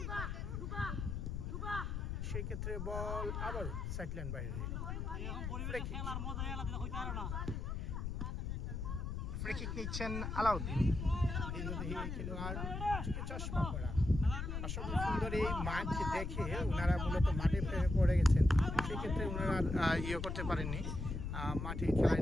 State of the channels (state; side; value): noise; left; rumble, 3 dB below the sound